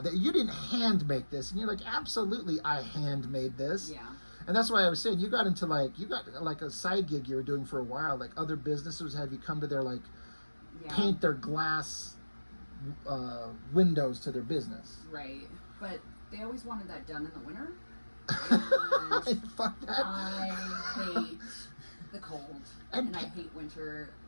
you didn't hand make this. And you're like, absolutely, I handmade this. Yeah. And that's why I was saying, you got a side gig you were doing for a while. Like, other businesses have you come to their, like, paint their glass windows to their business. Right. But they always wanted that done in the winter. Fuck that. I hate the cold. And I hate winter.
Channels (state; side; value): inverted; both; correlation -1.00